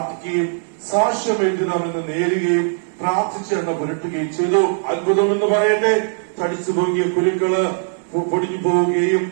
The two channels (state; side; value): silent; left; digital silence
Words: സാക്ഷ്യം എഴുതണമെന്ന് നേരുകയും പ്രാർത്ഥിച്ച് എന്നെ പുരട്ടുകയും ചെയ്തു. അത്ഭുതമെന്ന് പറയട്ടെ, തടിച്ചു പൊങ്ങിയ കുരുക്കള് പൊടിഞ്ഞു പോവുകയും